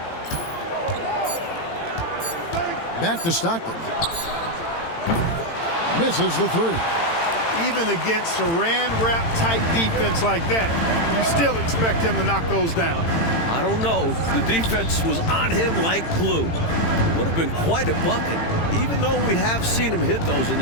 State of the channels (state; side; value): late; right; 18 ms